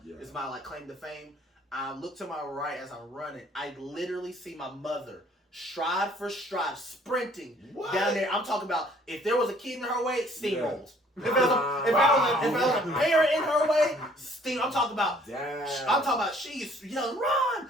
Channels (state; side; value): normal; both; correlation 0.58